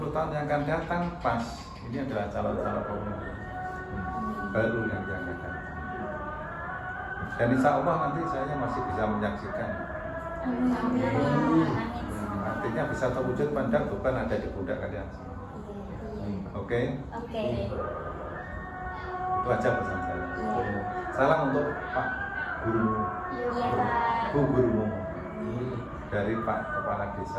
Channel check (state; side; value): identical; both; correlation 1.00